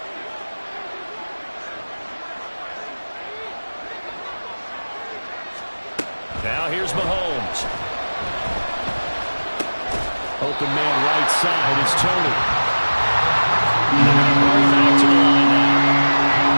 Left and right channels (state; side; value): inverted; both; correlation -1.00